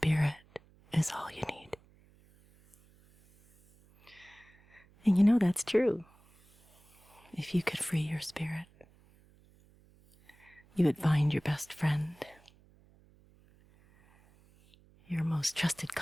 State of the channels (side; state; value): right; noise; hum, 29 dB below the sound